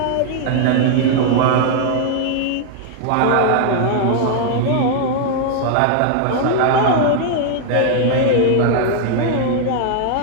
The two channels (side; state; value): both; different; correlation -0.01